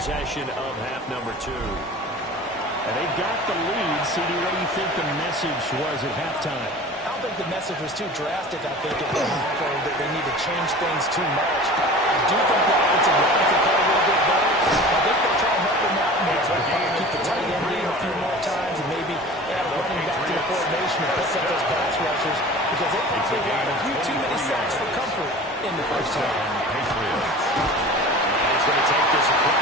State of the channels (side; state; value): both; normal; correlation 0.39